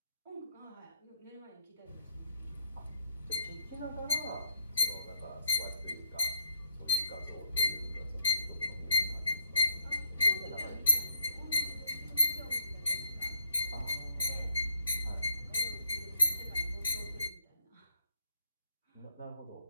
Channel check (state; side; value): inverted; both; correlation -0.66